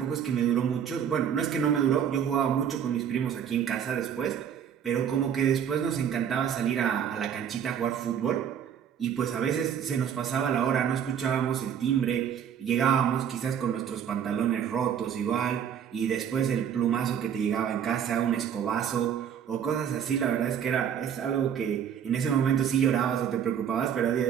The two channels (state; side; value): quieter; left; 8.5 dB